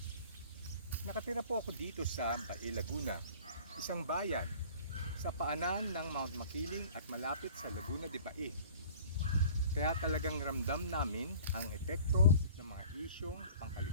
Nakatira po ako dito sa Bae, Laguna, isang bayan sa paanan ng Mount Makiling at malapit sa Laguna de Bae. Kaya talagang ramdam namin ang epekto ng mga isyong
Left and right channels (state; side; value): inverted; both; correlation -0.46